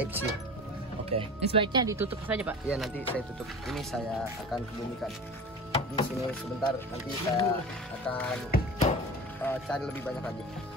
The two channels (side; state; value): both; normal; correlation 0.36